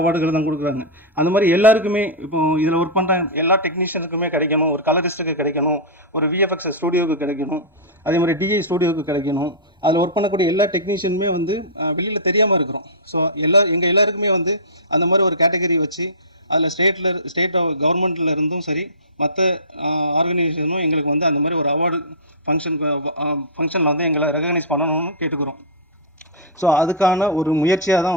தான் கொடுக்குறாங்க. அந்த மாதிரி எல்லாருக்குமே இப்போ இதில் ஒர்க் பண்ணுற எல்லா டெக்னீஷியனுக்குமே கிடைக்கணும், ஒரு கலரிஸ்ட்டுக்கு கிடைக்கணும், ஒரு விஎஃப்எக்ஸ் ஸ்டூடியோவுக்கு கிடைக்கணும், அதே மாதிரி டிஐ ஸ்டூடியோவுக்கு கிடைக்கணும். அதில் ஒர்க் பண்ணக்கூடிய எல்லா டெக்னீஷியனுமே வந்து வெளியில் தெரியாமல் இருக்கிறோம். ஸோ எங்கள் எல்லாருக்குமே வந்து அந்த மாதிரி ஒரு கேட்டகரி வச்சு அதில் ஸ்டேட் கவர்மெண்ட்டில் இருந்தும் சரி மற்ற ஆர்கனைசேஷனும் எங்களுக்கு வந்து அந்த மாதிரி ஒரு அவார்டு ஃபங்க்ஷனில் வந்து எங்களை ரெகக்னைஸ் பண்ணணும்னு கேட்டுக்கிறோம். ஸோ அதுக்கான ஒரு முயற்சியாக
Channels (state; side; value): normal; both; correlation -0.17